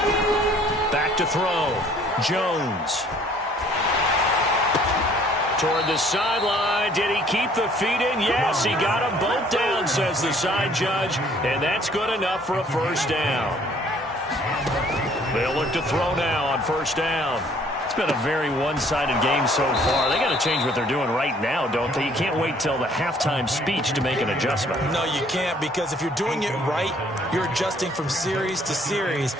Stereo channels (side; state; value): both; normal; correlation 0.59